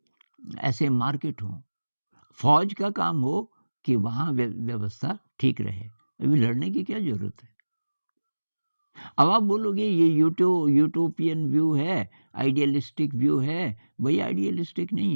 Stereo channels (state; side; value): inverted; both; correlation -1.00